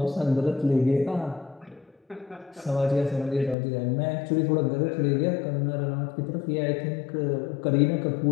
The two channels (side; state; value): right; drops out; at 3.6 s